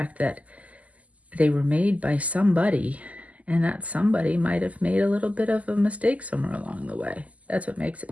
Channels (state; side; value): late; left; 0.073 ms